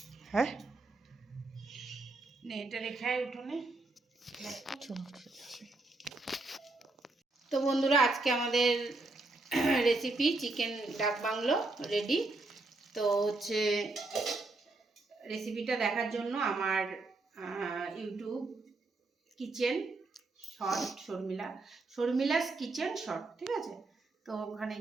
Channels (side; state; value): left; quieter; 3.2 dB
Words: है। নে এটা রেখে উঠোনে। चलो ठीक है। তো বন্ধুরা আজকে আমাদের recipe chicken dak bungalow ready. তো হচ্ছে রেসিপিটা দেখার জন্য আমার YouTube kitchen short Sharmila's kitchen short, ঠিক আছে? তো ওখানে